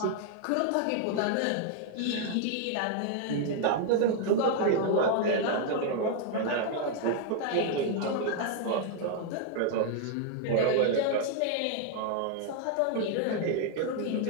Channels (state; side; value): different; both; correlation 0.00